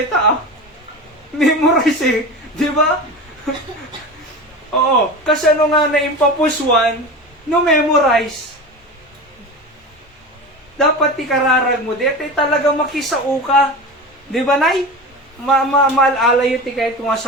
memorize di ba? Oo, kasi ano nga naimpapuswan, no memorize. Dapat ikararag mo, dito talaga makisao ka. Di ba, Nay? Maalala yun ti kahit nga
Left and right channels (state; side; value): normal; both; correlation 0.28